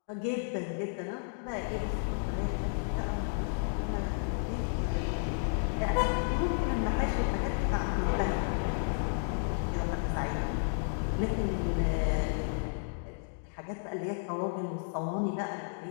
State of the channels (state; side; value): silent; right; digital silence